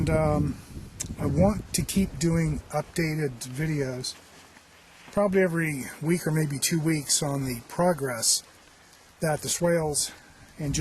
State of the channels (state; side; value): identical; both; correlation 1.00